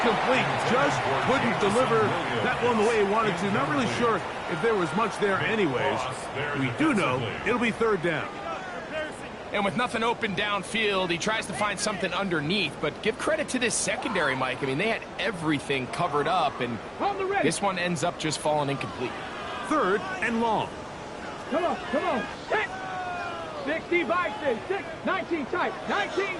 Just couldn't deliver that one the way he wanted to. Not really sure if there was much there anyways. We do know it'll be third down. And with nothing open downfield, he tries to find something underneath. But give credit to this secondary, Mike. I mean, they had everything covered up, and this one ends up just falling incomplete. Third and long. Come on, come on. 60 by 6, 19 tight, 19.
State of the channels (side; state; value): both; identical; correlation 1.00